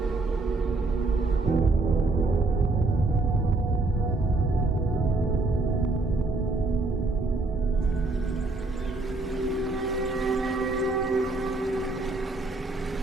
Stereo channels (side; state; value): left; quieter; 3.2 dB